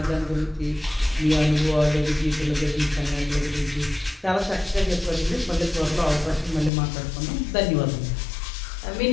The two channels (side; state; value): right; drops out; at 6.7 s